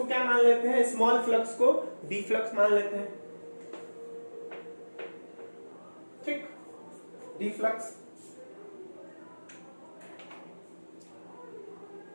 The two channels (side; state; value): both; inverted; correlation -1.00